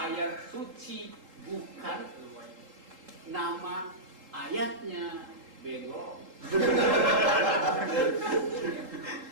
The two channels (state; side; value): late; left; 3.8 ms